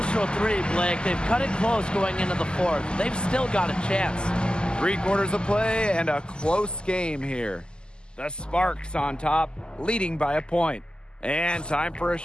3, Blake. They've cut it close going into the 4th. They've still got a chance. 3 quarters of play and a close game here. The Sparks on top, leading by a point. And time for a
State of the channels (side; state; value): right; late; 0.048 ms